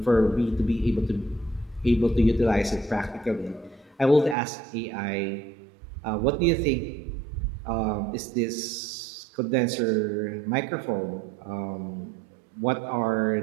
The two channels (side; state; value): left; drops out; at 4.4 s